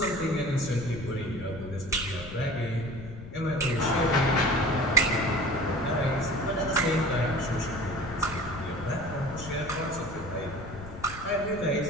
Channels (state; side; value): noise; left; rumble, 13 dB below the sound